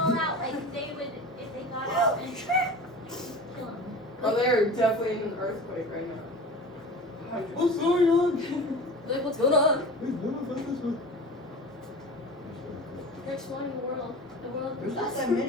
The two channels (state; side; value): normal; both; correlation 0.36